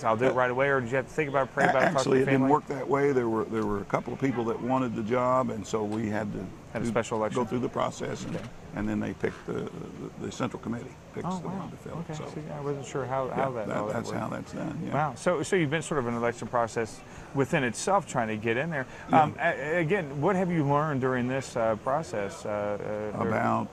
I'll do it right away, or did you have to think about it, pray about it, talk to Actually, the it didn't family? work that way. There were a couple of people that wanted the job, and so we had to a special election? go through the process, and then they picked the central committee picks the one to fill. Okay. So See, I wasn't sure how that that's worked. how that's done. Yeah. Wow. So you've been sort of an election process within itself, trying to get in there. Again, what have you learned during this process? About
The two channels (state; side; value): identical; both; correlation 1.00